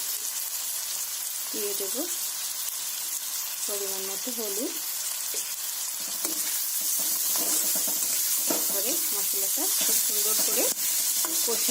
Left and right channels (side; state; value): both; identical; correlation 1.00